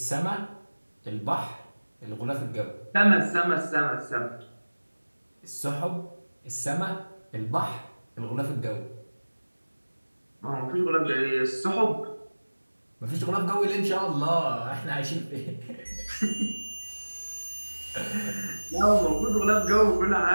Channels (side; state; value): both; inverted; correlation -1.00